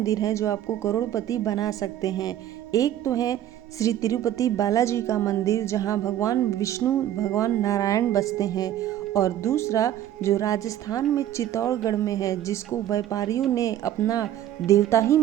हैं जो आपको करोड़पति बना सकते हैं। एक तो है श्री तिरुपति बालाजी का मंदिर जहां भगवान विष्णु भगवान नारायण बसते हैं, और दूसरा जो राजस्थान में चित्तौड़गढ़ में है जिसको व्यापारियों ने अपना देवता ही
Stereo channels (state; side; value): quieter; left; 11.9 dB